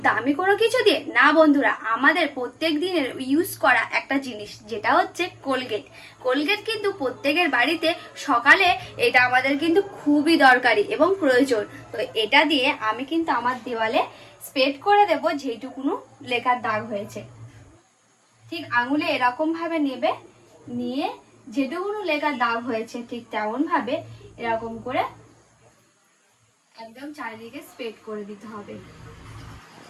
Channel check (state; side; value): identical; both; correlation 1.00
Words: দামি কোনো কিছু দিয়ে না বন্ধুরা, আমাদের প্রত্যেক দিনের ইউজ করা একটা জিনিস যেটা হচ্ছে কোলগেট। কোলগেট কিন্তু প্রত্যেকের বাড়িতে সকালে এটা আমাদের কিন্তু খুবই দরকারি এবং প্রয়োজন। তো এটা দিয়ে আমি কিন্তু আমার দেওয়ালে স্প্রেড করে দেব যেইটুকুনো লেখার দাগ হয়েছে। ঠিক আঙুলে এরকম ভাবে নেবে, নিয়ে যেটুকুনো লেখার দাগ হয়েছে ঠিক তেমন ভাবে এরকম করে একদম চারিদিকে স্প্রেড করে দিতে হবে।